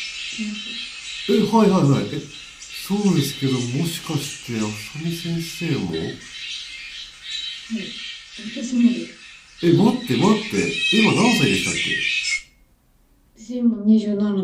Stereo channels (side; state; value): both; identical; correlation 1.00